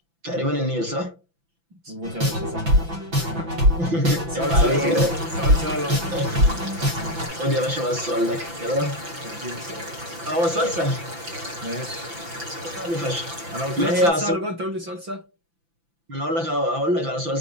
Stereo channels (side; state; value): left; late; 5.9 ms